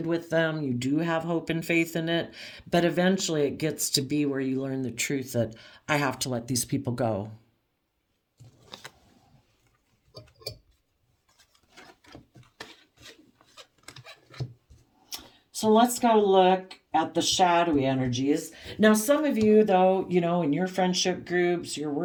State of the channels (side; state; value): both; identical; correlation 1.00